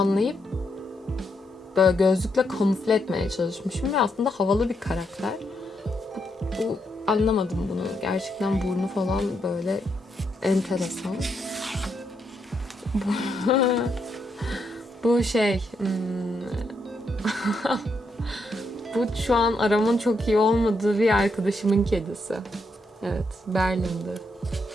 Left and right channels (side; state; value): both; normal; correlation 0.79